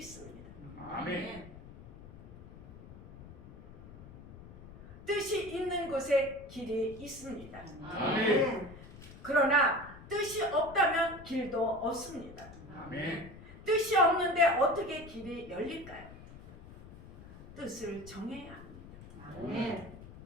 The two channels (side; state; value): left; noise; rumble, 17 dB below the sound